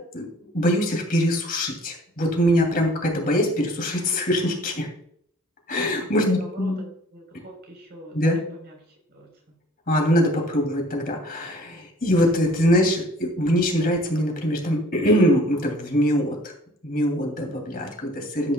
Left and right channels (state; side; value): normal; both; correlation 0.53